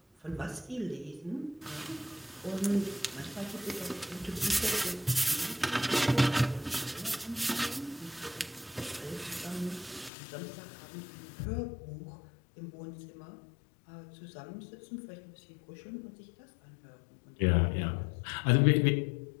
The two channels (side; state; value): right; drops out; at 10.1 s